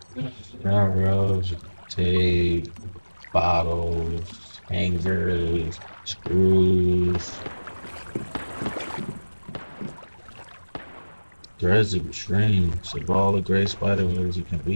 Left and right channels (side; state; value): both; inverted; correlation -1.00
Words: Railroads, tape, bottles, hangers, screws. Threads of dreams. Of all the gray spider webs, you can